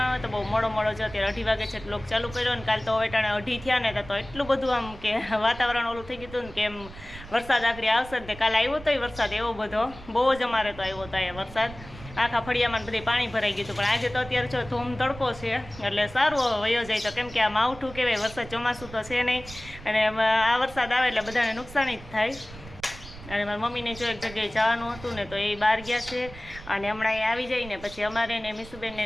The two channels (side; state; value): right; noise; rumble, 16 dB below the sound